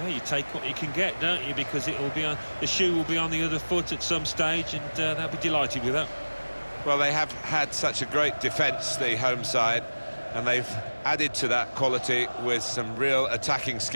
you take what you can get, don't you? Because it will be on, the shoe will be on the other foot at some stage, and they'll be delighted with that. Well, they have had such a great defence, the home side, and they've added to that quality with some real attacking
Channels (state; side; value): inverted; both; correlation -1.00